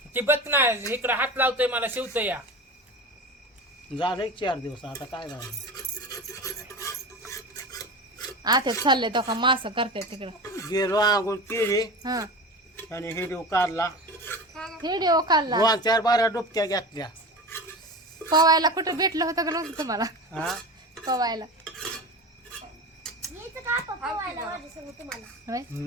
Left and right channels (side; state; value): both; normal; correlation 0.30